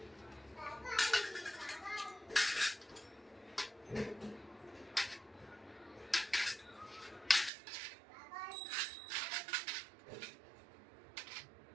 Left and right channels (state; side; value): drops out; left; at 7.5 s